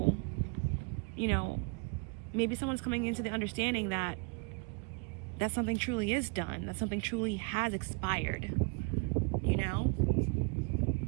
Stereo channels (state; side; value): quieter; left; 31.6 dB